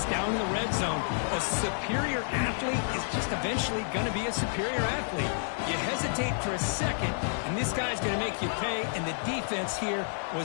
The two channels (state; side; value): silent; right; 57 dB below the other